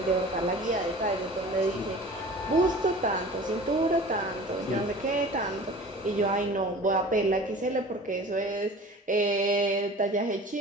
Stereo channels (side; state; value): both; normal; correlation 0.41